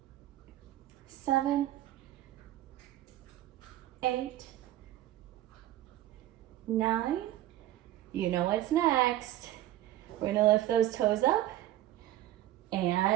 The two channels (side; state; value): left; quieter; 14.1 dB